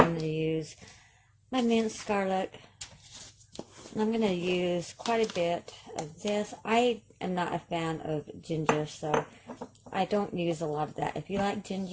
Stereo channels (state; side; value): identical; both; correlation 1.00